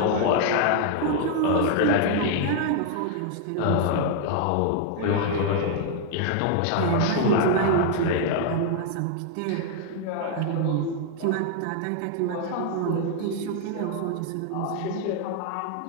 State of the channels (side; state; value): both; different; correlation 0.00